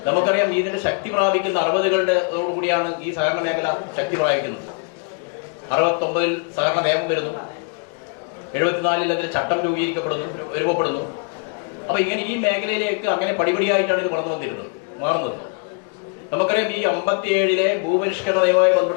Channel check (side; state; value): right; quieter; 39.8 dB